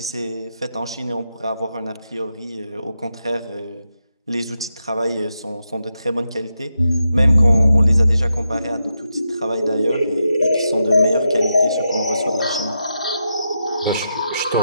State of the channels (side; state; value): both; inverted; correlation -0.86